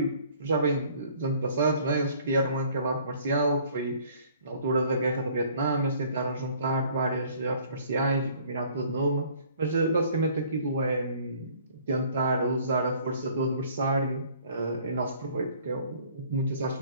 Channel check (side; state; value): both; inverted; correlation -0.56